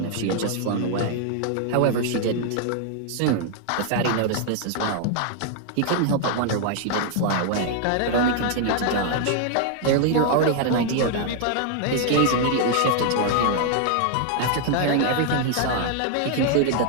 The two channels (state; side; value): different; both; correlation 0.00